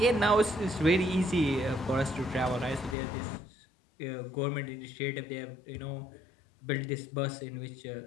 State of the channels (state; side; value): drops out; right; at 3.0 s